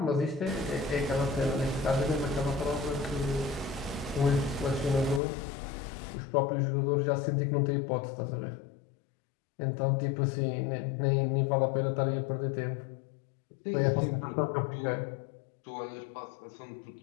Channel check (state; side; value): drops out; right; at 5.2 s